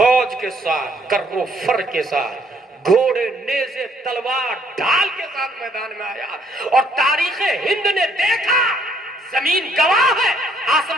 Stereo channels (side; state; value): both; normal; correlation 0.66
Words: کے ساتھ، کرو فر کے ساتھ، گھوڑے نیزے تلوار ڈھال کے ساتھ میدان میں آیا. اور تاریخ ہند نے دیکھا، زمین گواہ ہے،